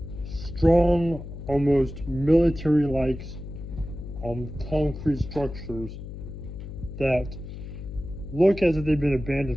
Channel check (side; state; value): left; noise; hum, 10 dB below the sound